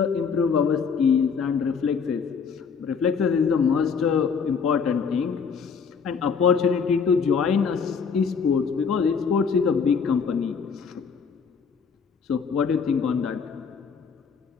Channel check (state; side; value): quieter; right; 6.0 dB